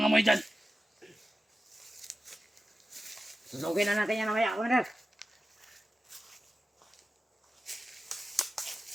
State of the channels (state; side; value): normal; both; correlation 0.93